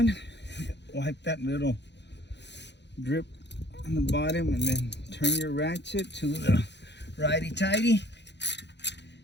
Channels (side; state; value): right; late; 0.50 ms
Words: Wipe that little drip on the bottom, and then turn your ratchet to the righty-tighty.